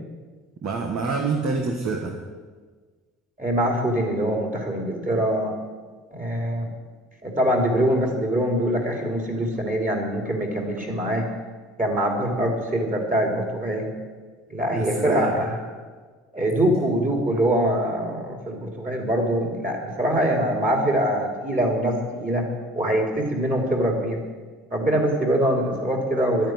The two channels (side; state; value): both; normal; correlation 0.49